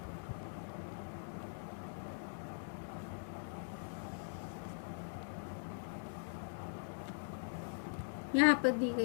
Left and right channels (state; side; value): silent; right; digital silence